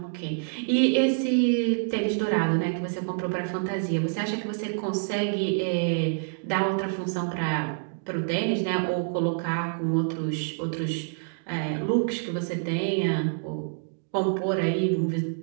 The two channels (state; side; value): silent; left; digital silence